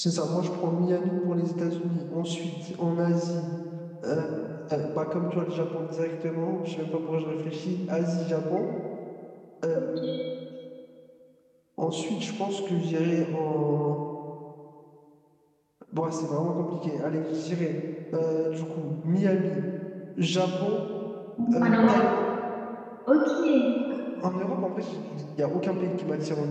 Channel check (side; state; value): both; identical; correlation 1.00